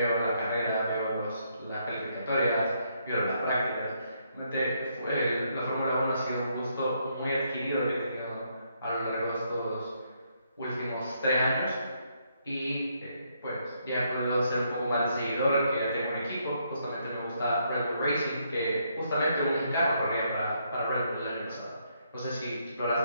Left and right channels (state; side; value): inverted; both; correlation -0.74